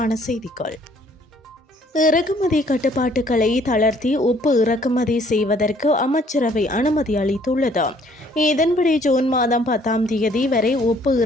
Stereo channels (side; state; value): both; normal; correlation 0.61